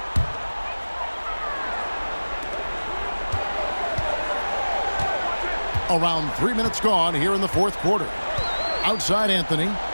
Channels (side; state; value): both; inverted; correlation -1.00